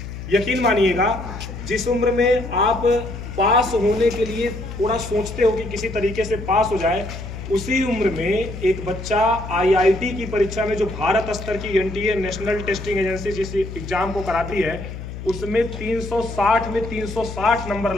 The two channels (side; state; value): left; noise; hum, 9 dB below the sound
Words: यकीन मानिएगा, जिस उम्र में आप पास होने के लिए थोड़ा सोचते हो कि किसी तरीके से पास हो जाए, उसी उम्र में एक बच्चा आईआईटी की परीक्षा में, जो भारत स्तर की एनटीए नेशनल टेस्टिंग एजेंसी जिस एग्जाम को कराती है, उसमें 360 में 360 नंबर